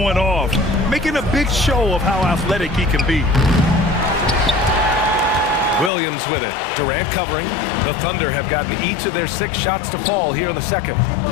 off, making a big show of how athletic he can be. Williams with it. Durant covering. The Thunder have gotten each of their 6 shots to fall here in the second.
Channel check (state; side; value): drops out; right; at 5.9 s